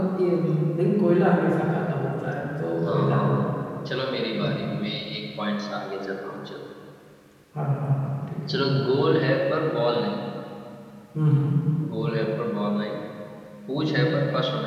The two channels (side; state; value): both; identical; correlation 1.00